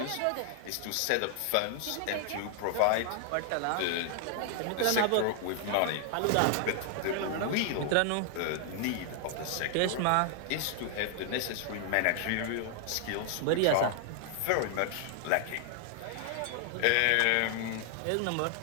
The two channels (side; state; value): both; different; correlation 0.00